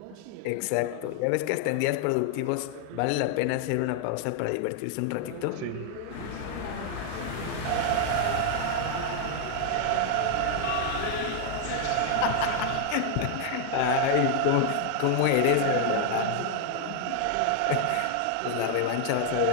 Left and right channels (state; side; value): different; both; correlation 0.00